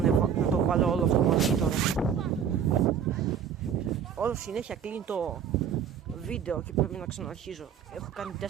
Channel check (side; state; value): left; quieter; 8.0 dB